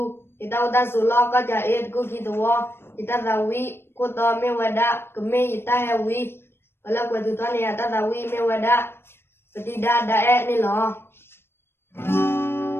ita uta sulo ka ja et ku kitwo ita dawi ko to me wada keme ita hewi ala bwedu to ne ata dawi me wada peti da e ni lo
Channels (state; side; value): late; right; 0.11 ms